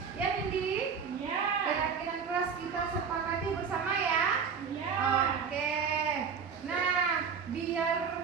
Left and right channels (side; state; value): left; quieter; 6.2 dB